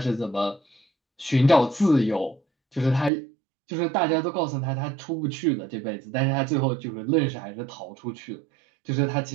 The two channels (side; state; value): left; drops out; at 3.1 s